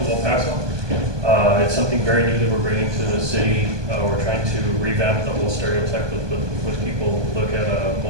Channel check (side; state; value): left; late; 1.2 ms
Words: El Paso. It's something very new that we're bringing to the city. We're trying to revamp the whole stereotype with people look at